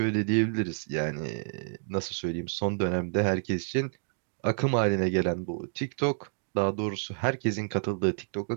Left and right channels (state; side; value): silent; left; digital silence